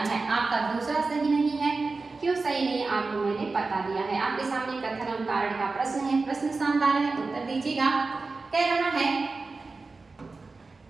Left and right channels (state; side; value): quieter; left; 3.9 dB